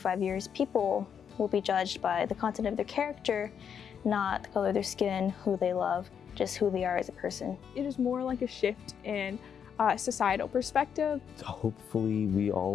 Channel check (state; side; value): quieter; right; 7.7 dB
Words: years, people will be judged by the content of their character, not the color of their skin, who they love, just who they are as a person. It is more like a shift in societal perspective. Hopefully we